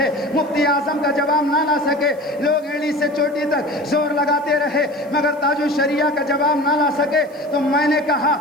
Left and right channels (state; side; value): noise; right; hiss, 29 dB below the sound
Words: مفتی اعظم کا جواب نہ لا سکے، لوگ ایلی سے چوٹی تک زور لگاتے رہے مگر تاج الشریعہ کا جواب نہ لا سکے۔ تو میں نے کہا